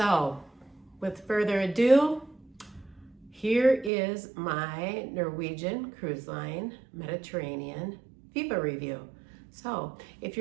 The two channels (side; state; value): left; drops out; at 3.9 s